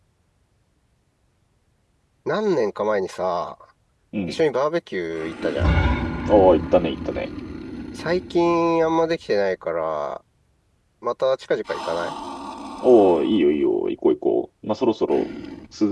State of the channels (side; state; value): both; identical; correlation 1.00